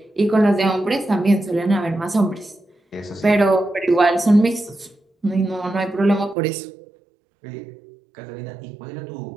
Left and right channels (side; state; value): left; drops out; at 6.4 s